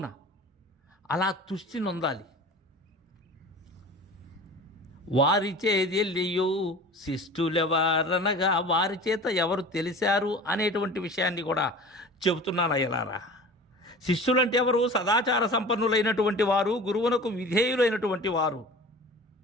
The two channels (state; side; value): normal; both; correlation 0.39